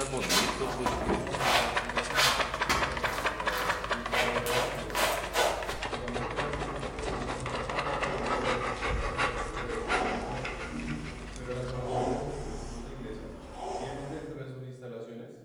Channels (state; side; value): identical; both; correlation 1.00